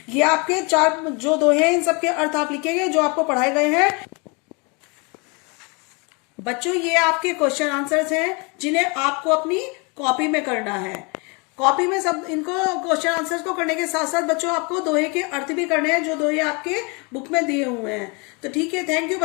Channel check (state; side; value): quieter; right; 31.2 dB